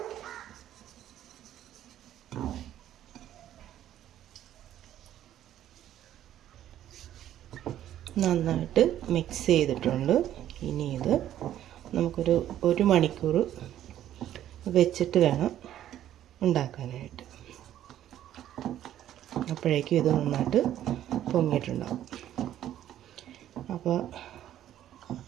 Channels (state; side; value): quieter; left; 11.8 dB